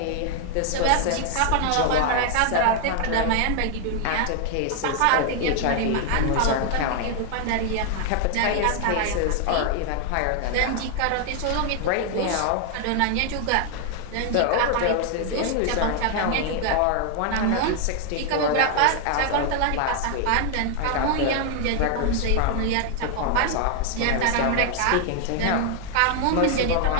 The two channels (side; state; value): both; different; correlation 0.00